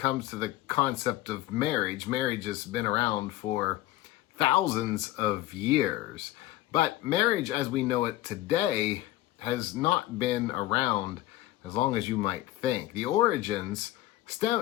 to the concept of marriage has been around for thousands of years. But marriage as we know it today has not been around as long as you might think. The origins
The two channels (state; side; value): quieter; right; 16.0 dB